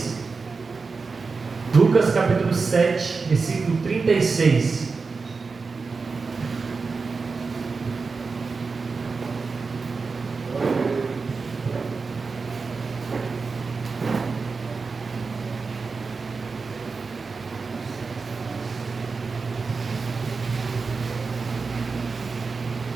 Lucas capítulo 7, versículo 36.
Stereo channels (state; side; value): quieter; left; 4.5 dB